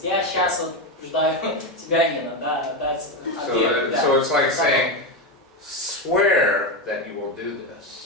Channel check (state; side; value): normal; both; correlation 0.12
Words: я сейчас вот побуждаю тебя, Нина, да, дать обет. да. So it's like saying, swear that you will do